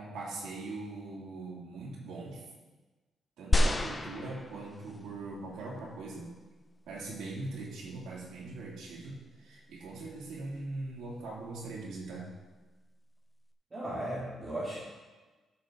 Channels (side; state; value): both; normal; correlation 0.86